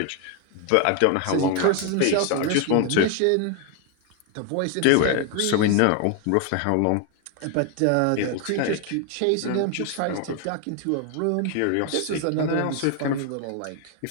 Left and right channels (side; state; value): both; different; correlation 0.01